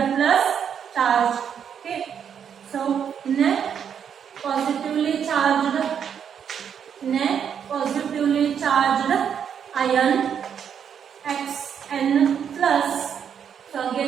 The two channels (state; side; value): quieter; left; 8.0 dB